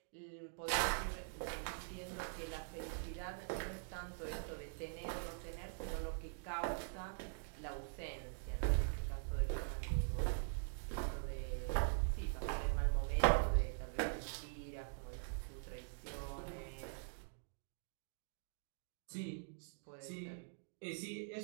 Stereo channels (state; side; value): silent; left; digital silence